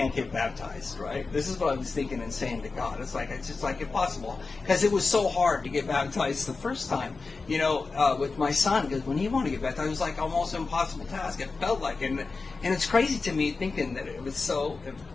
get baptized, right? This is what I was thinking and saying to God. It's just like impossible, because it was so hard to get baptized the first time, with my son, because when he wanted to get baptized, it was like almost an impossible task. It felt like, and it's crazy to me thinking that it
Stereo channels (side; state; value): right; quieter; 4.1 dB